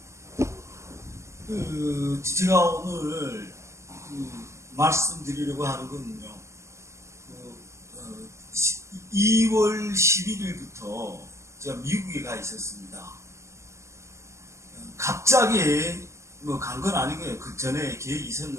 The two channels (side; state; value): left; late; 0.14 ms